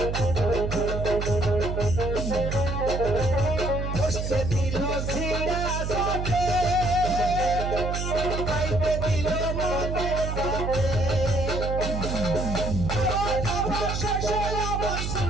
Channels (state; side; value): noise; right; hum, 2 dB below the sound